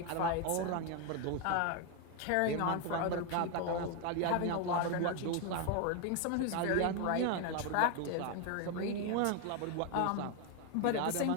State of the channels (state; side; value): different; both; correlation 0.01